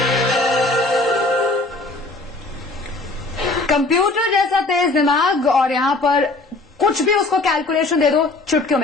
कंप्यूटर जैसा तेज दिमाग और यहां पर कुछ भी उसको कैलकुलेशन दे दो चुटकियों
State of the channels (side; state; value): right; quieter; 3.1 dB